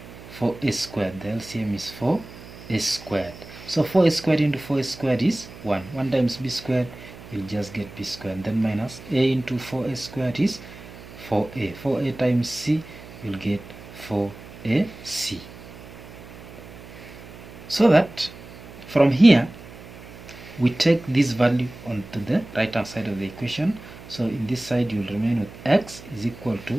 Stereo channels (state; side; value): noise; right; hum, 17 dB below the sound